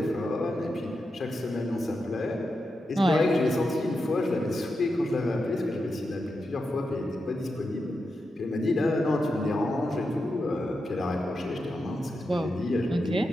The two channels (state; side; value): normal; both; correlation 0.88